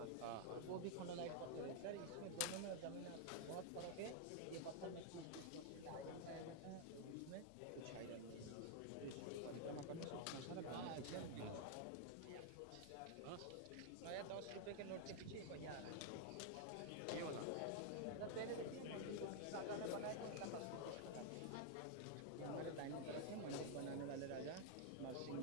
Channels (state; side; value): different; both; correlation 0.00